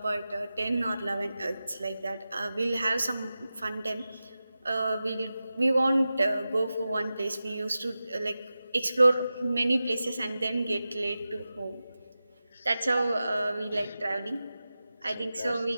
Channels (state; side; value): inverted; both; correlation -0.94